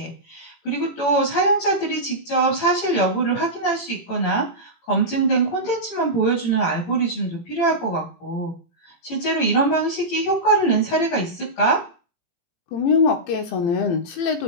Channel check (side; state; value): right; late; 18 ms